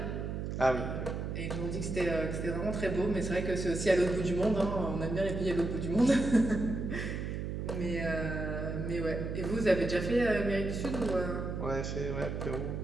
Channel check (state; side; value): noise; right; hum, 4 dB below the sound